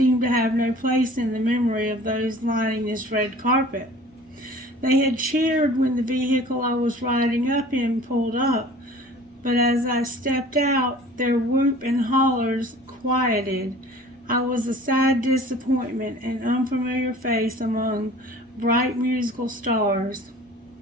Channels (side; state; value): both; normal; correlation 0.46